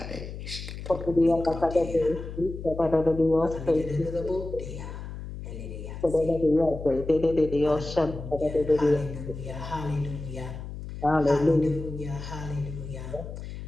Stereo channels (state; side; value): noise; left; hum, 9 dB below the sound